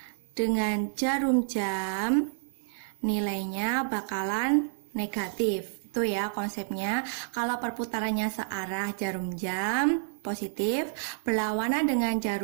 dengan jarum jam, nilainya bakalan negatif. Itu ya konsepnya. Kalau perputarannya searah jarum jam positif, berlawanan dengan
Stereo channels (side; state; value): left; silent; digital silence